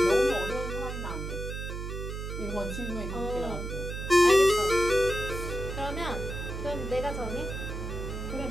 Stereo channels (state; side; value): noise; right; hum, 6 dB below the sound